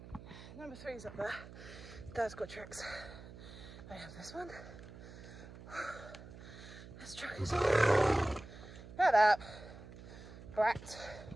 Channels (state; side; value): noise; right; hum, 15 dB below the sound